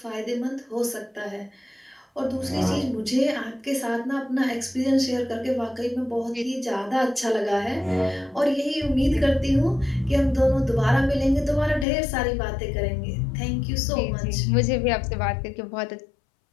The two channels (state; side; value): drops out; right; at 11.9 s